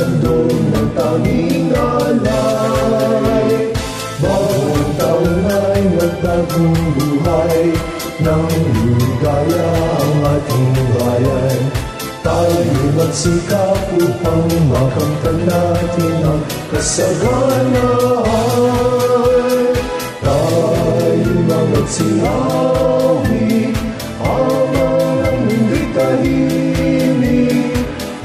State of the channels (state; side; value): identical; both; correlation 1.00